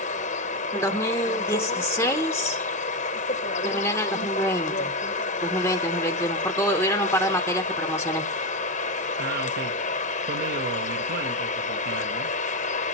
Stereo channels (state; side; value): normal; both; correlation 0.09